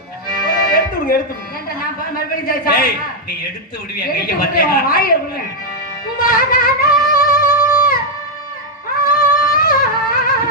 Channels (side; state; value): both; normal; correlation -0.01